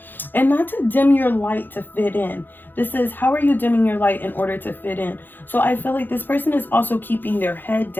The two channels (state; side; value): late; right; 0.092 ms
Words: and not to dim your light to fit in. This is, how are you dimming your light in order to fit in? So I feel like this person is also keeping their head